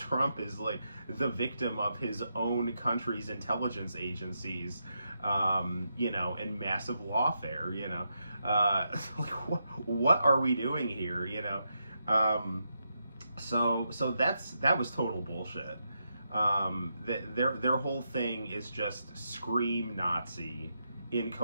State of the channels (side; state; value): both; inverted; correlation -0.83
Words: is like the victim of his own country's intelligence agencies, and massive lawfare. Like what are we doing here? So that was total bullshit. Their whole thing is just scream Nazi